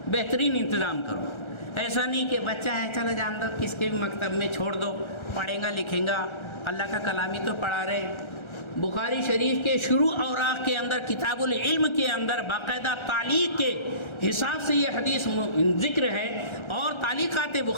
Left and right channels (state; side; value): late; right; 1.3 ms